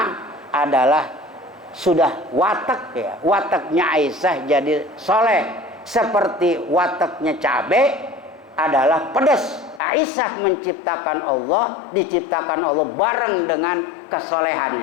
adalah sudah watak ya. Wataknya Aisyah jadi soleh. Seperti wataknya cabai adalah pedas. Aisyah menciptakan Allah, diciptakan Allah bareng dengan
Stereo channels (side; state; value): right; drops out; at 9.8 s